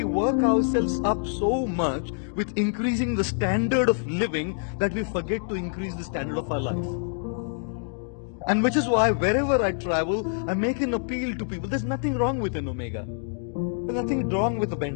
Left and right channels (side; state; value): right; silent; digital silence